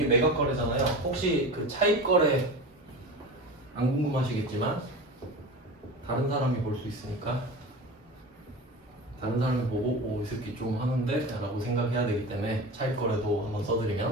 매각 거래잖아요. 혹시 그 차입 거래 안 궁금하시겠지만 다른 사람이 볼 수 있으니까 다른 사람이 보고 이 새끼 좀 하는데? 라고 생각해야 되기 때문에 차입 거래도 한번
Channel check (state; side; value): normal; both; correlation 0.31